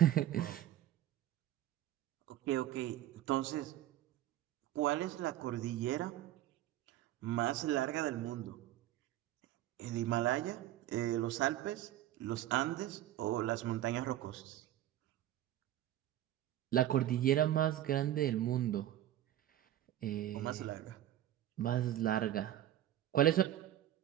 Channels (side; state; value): left; quieter; 12.9 dB